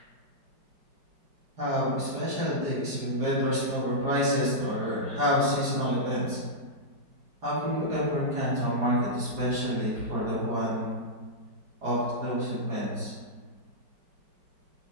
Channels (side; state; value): left; late; 5.0 ms